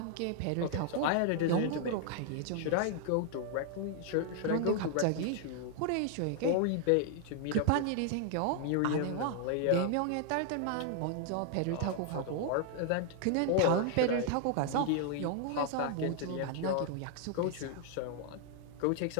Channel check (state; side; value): different; both; correlation 0.00